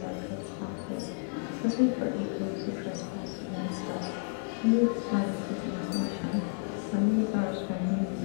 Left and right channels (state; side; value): silent; right; 57 dB below the other